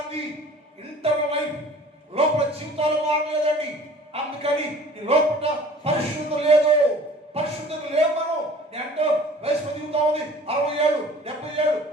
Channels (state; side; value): normal; both; correlation 0.48